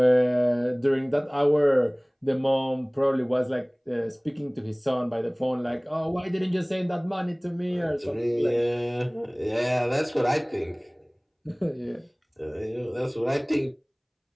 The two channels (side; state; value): both; identical; correlation 1.00